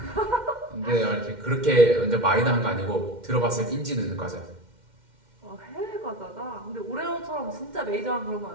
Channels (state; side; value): late; left; 2.1 ms